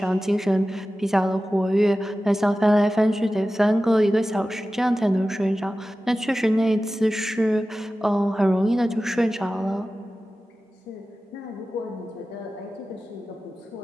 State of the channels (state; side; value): normal; both; correlation 0.95